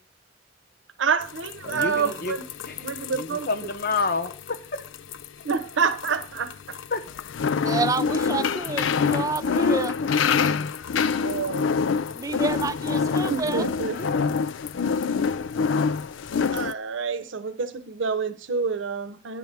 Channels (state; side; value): normal; both; correlation 0.11